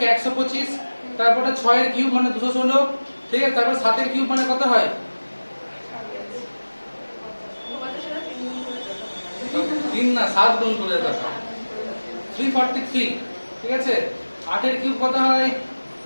125 তারপরে 6 এর কিউব মানে 216 ঠিক আছে তারপর 7 এর কিউব মানে কত হয় 3 না 7 গুণ করে দেখা 343 ঠিক আছে। 8 এর কিউব কত হয়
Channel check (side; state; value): both; inverted; correlation -1.00